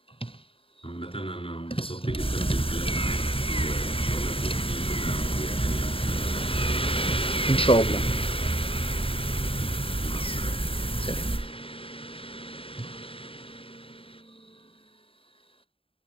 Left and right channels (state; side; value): late; right; 0.27 ms